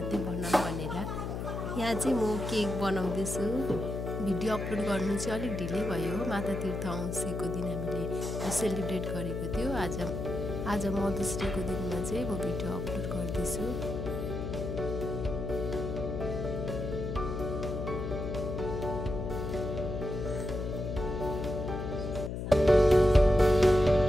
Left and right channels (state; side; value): noise; left; hum, 4 dB below the sound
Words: बनाऊँ भनेर। यहाँ चाहिँ म केक बनाउँदैछु। भिडियो अपलोड गर्नु चाहिँ अलिक ढिलै भयो। माता तीर्थ औँसीको दिन हामीले सेलिब्रेट गरेको थियो। आज मदर्स डेको दिनमा चाहिँ म भिडियो अपलोड गर्दैछु।